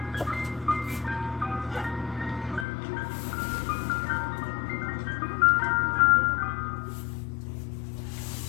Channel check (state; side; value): drops out; right; at 2.7 s